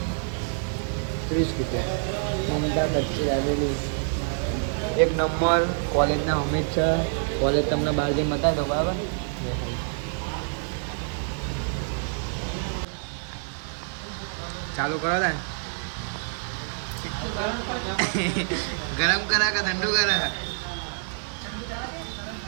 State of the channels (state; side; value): silent; left; 60 dB below the other